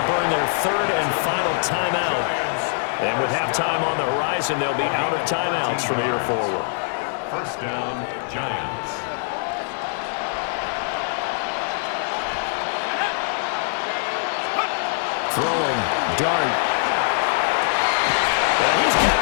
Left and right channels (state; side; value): silent; right; digital silence